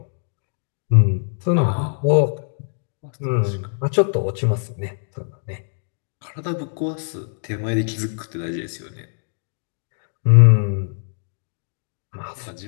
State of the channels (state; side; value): silent; right; digital silence